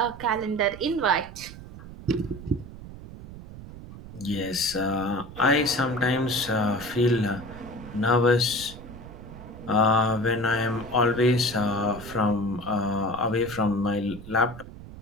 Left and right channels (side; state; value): right; noise; rumble, 14 dB below the sound